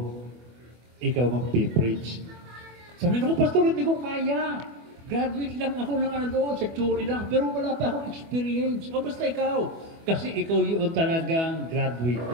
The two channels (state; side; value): late; left; 24 ms